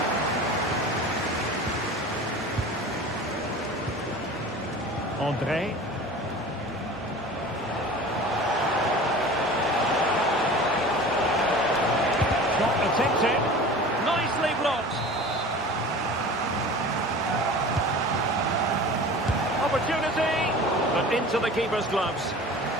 André. Shot attempted. Nicely blocked. Opportunity, but into the keeper's gloves.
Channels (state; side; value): normal; both; correlation 0.38